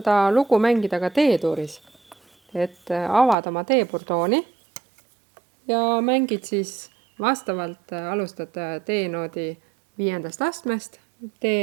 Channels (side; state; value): left; drops out; at 3.4 s